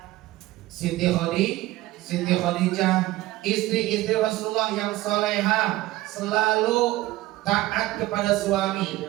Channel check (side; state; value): left; quieter; 17.3 dB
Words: Siti Khadijah, istri-istri Rasulullah yang soleha, selalu taat kepada suami.